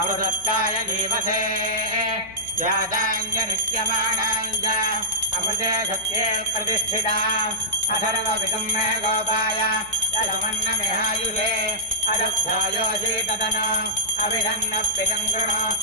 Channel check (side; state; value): left; noise; hum, 23 dB below the sound